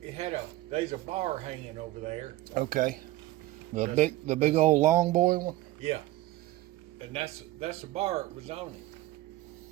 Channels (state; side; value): quieter; left; 16.8 dB